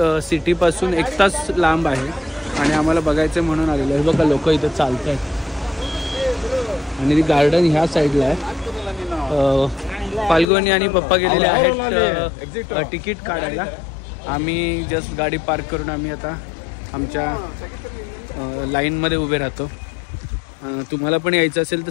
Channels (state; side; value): drops out; right; at 10.5 s